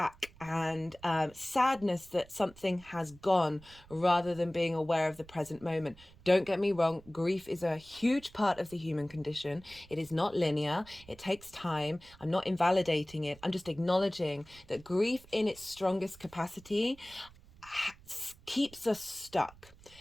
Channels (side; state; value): right; noise; rumble, 23 dB below the sound